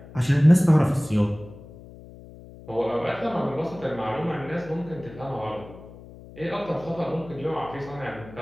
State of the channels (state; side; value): noise; left; hum, 18 dB below the sound